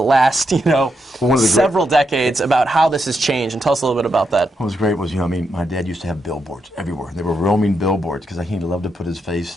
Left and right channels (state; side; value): normal; both; correlation 0.82